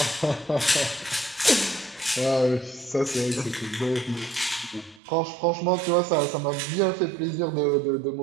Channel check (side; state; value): left; drops out; at 5.0 s